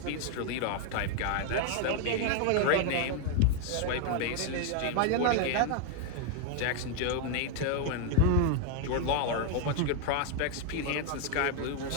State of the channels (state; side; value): different; both; correlation 0.00